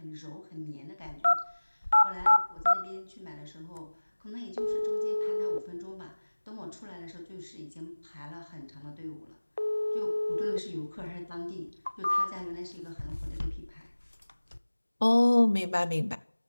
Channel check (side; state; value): both; inverted; correlation -1.00